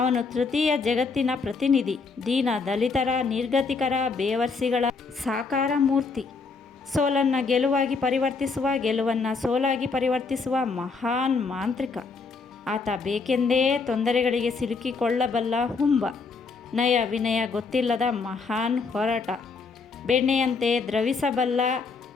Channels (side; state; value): right; quieter; 4.6 dB